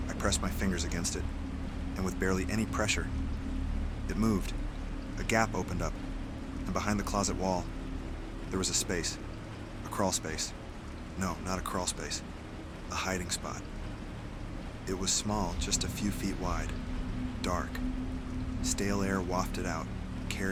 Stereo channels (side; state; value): both; identical; correlation 1.00